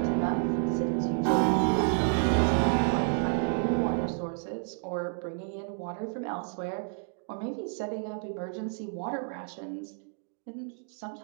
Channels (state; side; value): silent; left; digital silence